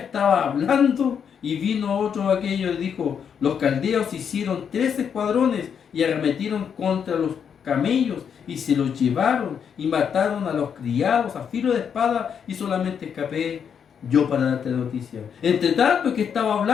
hablando y vino otro de aquellos y dijo: los caldeos hicieron 3 escuadrones y arremetieron contra los camellos y se los llevaron y mataron a los criados a filo de espada, y solamente escapé yo para darte la noticia. Entre tanto que estaba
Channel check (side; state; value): right; quieter; 7.5 dB